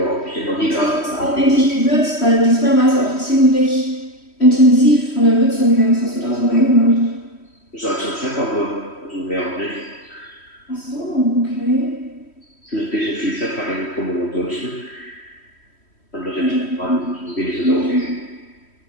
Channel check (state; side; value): late; right; 3.1 ms